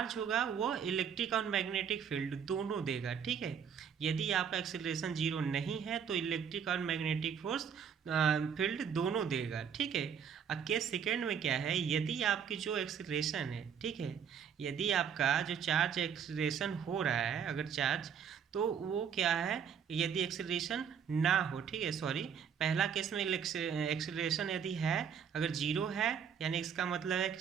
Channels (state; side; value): quieter; left; 7.6 dB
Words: होगा वो इलेक्ट्रिक और मैग्नेटिक फील्ड दोनों देगा। ठीक है, यदि आपका एक्सेलरेशन जीरो नहीं है तो इलेक्ट्रिक और मैग्नेटिक फोर्स फील्ड दोनों देगा। ठीक है, अब केस सेकेंड में क्या है, यदि आपकी जो एक्सेलरेशन है, ठीक है, यदि आपका जो चार्ज एक्सेलरेशन हो रहा है अगर चार्ज, तो वो क्या है, यदि एक्सेलरेशन ना हो। ठीक है, सॉरी, पहला केस में एक्सेलरेशन यदि है, अगर जीरो है यानी इसका मतलब है